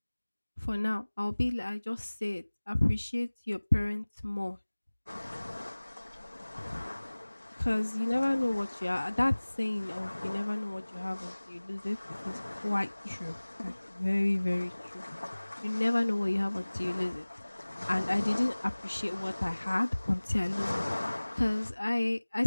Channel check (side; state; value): both; inverted; correlation -1.00